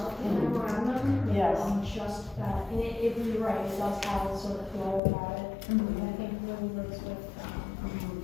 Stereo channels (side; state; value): right; drops out; at 5.0 s